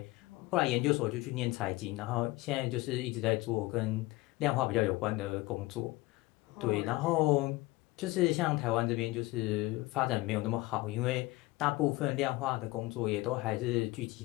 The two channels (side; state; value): right; quieter; 20.6 dB